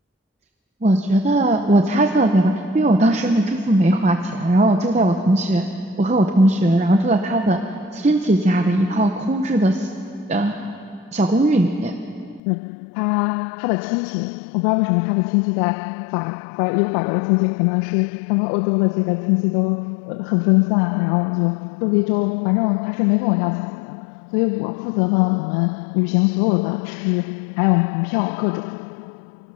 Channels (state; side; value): drops out; right; at 12.4 s